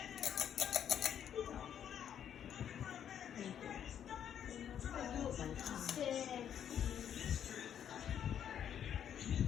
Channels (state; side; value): quieter; right; 9.3 dB